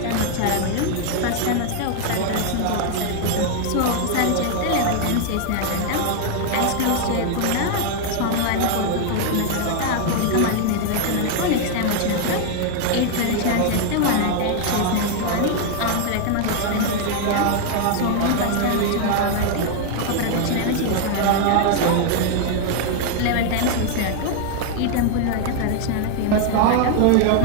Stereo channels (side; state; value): both; different; correlation 0.00